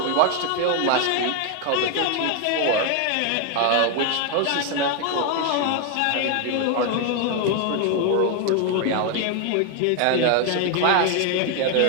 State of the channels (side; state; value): both; different; correlation 0.01